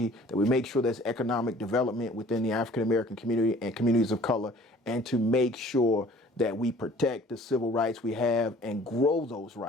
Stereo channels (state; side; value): normal; both; correlation 0.51